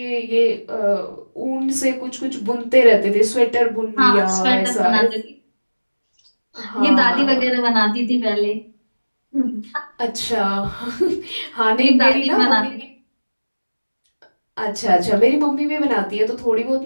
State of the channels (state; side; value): inverted; both; correlation -1.00